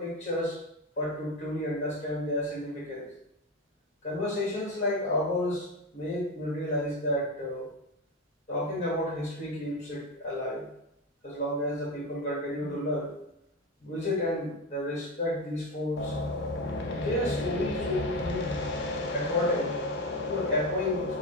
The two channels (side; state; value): both; normal; correlation 0.17